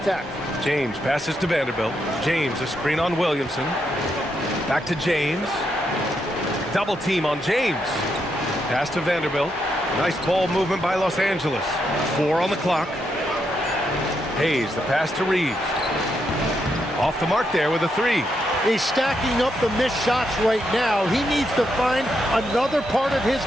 James passes to Vanderbilt. James a screen on Williamson. Back to James. Double team on James. Pass to Vanderbilt. Nice ball movement by Los Angeles. 4 on the clock. Hayes, the pass to Reeves. Off the mark there with a 3. He's stacking up the missed shots right now. He needs to find another part of his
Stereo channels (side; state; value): both; normal; correlation 0.80